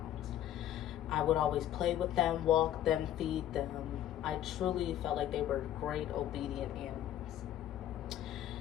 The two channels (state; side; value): quieter; right; 11.9 dB